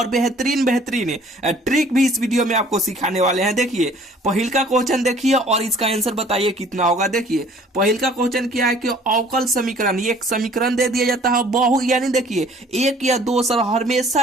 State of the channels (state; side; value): normal; both; correlation 0.54